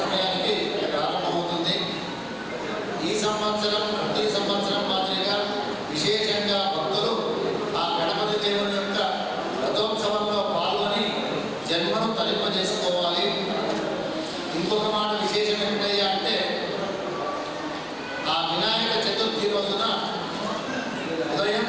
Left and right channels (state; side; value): identical; both; correlation 1.00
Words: సమయానికి ప్రారంభమవుతుంది. ఈ సంవత్సరం ప్రతి సంవత్సరం మాదిరిగా విశేషంగా భక్తులు ఆ గణపతి దేవుని యొక్క రథోత్సవంలో పాల్గొని జన్మను తరింపజేసుకోవాలి. ఇంకొక మాట విశేషం ఏమిటయ్యా అంటే, ఆ వినాయక చతుర్థి రోజున ఉదయం